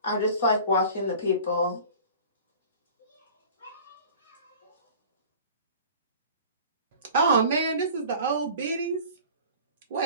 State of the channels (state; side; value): inverted; both; correlation -0.42